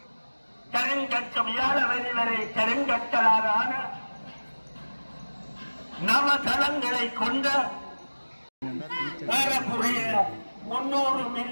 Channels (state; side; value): inverted; both; correlation -1.00